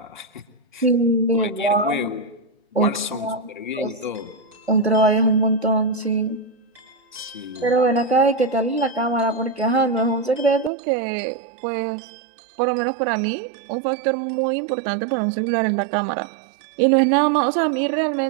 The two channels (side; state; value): left; drops out; at 10.7 s